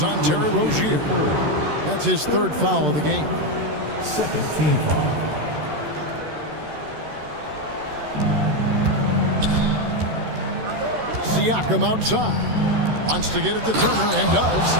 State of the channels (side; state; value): left; late; 13 ms